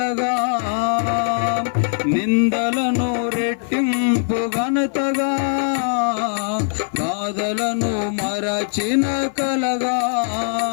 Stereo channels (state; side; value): silent; right; 57 dB below the other